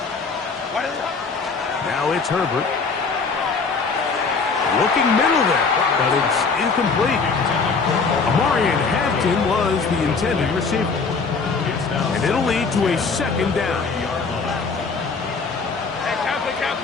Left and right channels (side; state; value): right; quieter; 4.7 dB